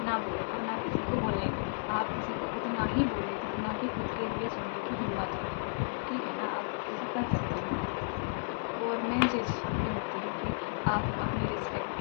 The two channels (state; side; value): silent; right; digital silence